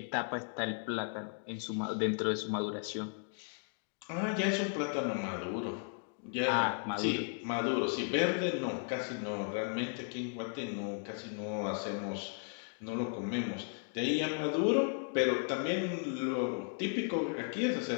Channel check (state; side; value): silent; right; 54 dB below the other